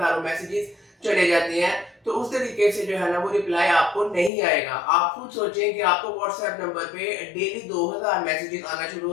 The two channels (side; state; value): right; drops out; at 4.3 s